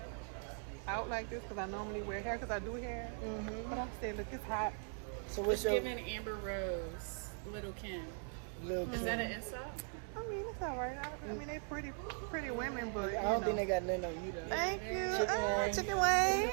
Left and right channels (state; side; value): silent; left; 51 dB below the other